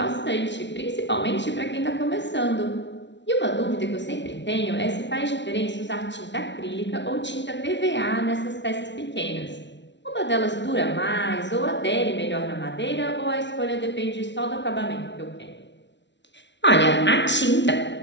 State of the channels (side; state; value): right; late; 0.52 ms